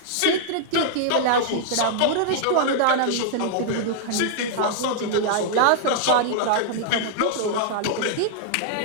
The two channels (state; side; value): different; both; correlation -0.01